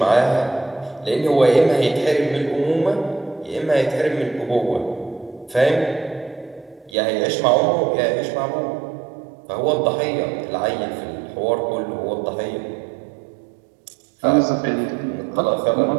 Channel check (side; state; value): left; drops out; at 6.9 s